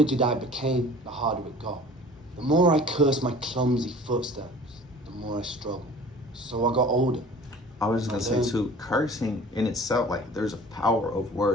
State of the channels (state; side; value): normal; both; correlation 0.45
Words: I became, the harder it got. The more I cursed my clumsy footsteps, the more I struggled. So I got older. I was just gonna say too, cursing in itself, like there's a power of